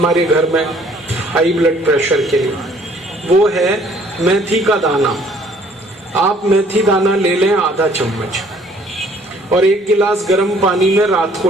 घर में हाई ब्लड प्रेशर के लिए, वो है मेथी का दाना। आप मेथी दाना ले लें आधा चम्मच और 1 गिलास गर्म पानी में रात को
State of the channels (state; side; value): normal; both; correlation 0.59